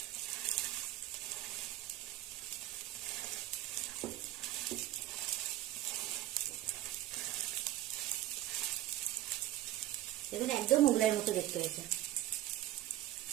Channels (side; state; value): left; quieter; 14.5 dB